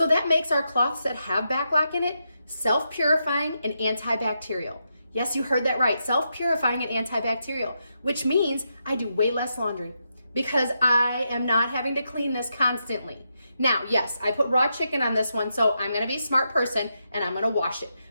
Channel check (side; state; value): both; inverted; correlation -0.84